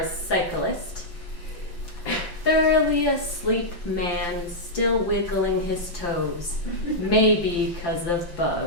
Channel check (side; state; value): right; late; 5.9 ms